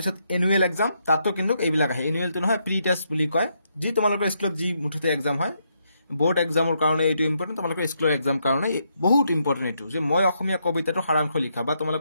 এনুৱেল এক্সাম, তাতো কিন্তু এইবিলাক আহে। এনুৱেলটো নহয়, প্ৰি টেষ্ট বুলি কয়। যি তোমালোকৰ স্কুলত যি মুঠতে এক্সাম হয়, বোৰ্ড এক্সামৰ কাৰণে এইটো ইম্পৰ্টেণ্ট, তোমালোকৰ স্কুলৰ এক্সাম কাৰণে বহুত ইম্পৰ্টেণ্ট এইটো, যে মই অসমীয়া কবিতাটোৰ সাৰাংশ লিখা, বা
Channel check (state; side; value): inverted; both; correlation -0.78